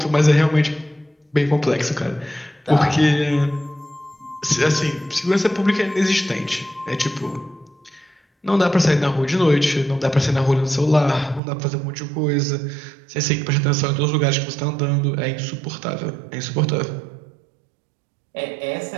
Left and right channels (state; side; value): drops out; left; at 11.4 s